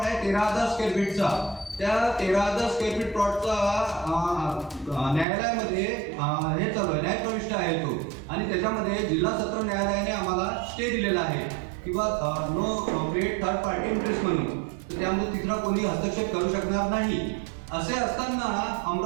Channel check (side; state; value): left; drops out; at 5.2 s